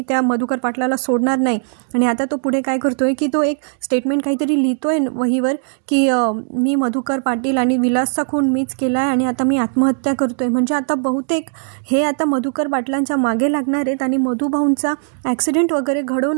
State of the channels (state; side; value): silent; left; digital silence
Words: त्या मधुकर पाटलाला सोडणार नाही. आणि आता तो पुढे काय करतोय की तो एक स्टेटमेंट काहीतरी लिहितोय वहीवर की मी मधुकर पाटील आणि विलासचा खून मीच केला आहे आणि आता मी आत्महत्या करतोय. म्हणजे आता बहुतेक हे आता मधुकर पाटलांच्या मागे लागणार आहेत आणि मधुभाऊंचा ॲक्सिडेंट वगैरे